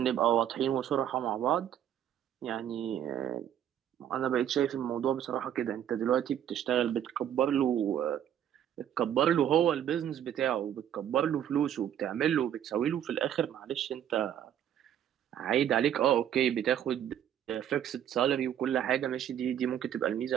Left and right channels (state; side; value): quieter; left; 10.2 dB